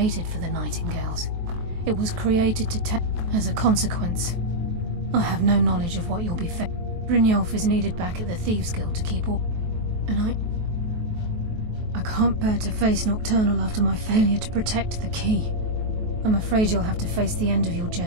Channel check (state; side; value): late; left; 23 ms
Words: for the Nightingales. It was created to take. As a consequence, I have no knowledge of what you'll be facing. Brynjolf is needed back at the Thieves' Guild to keep all. And I can't bear to face Nocturnal after my failure to protect the key. I'm afraid you'll have to face the end of your